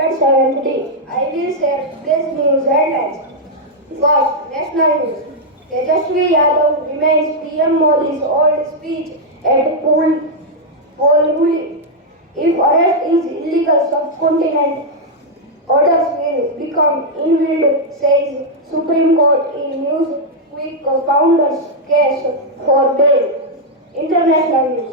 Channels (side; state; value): both; normal; correlation -0.03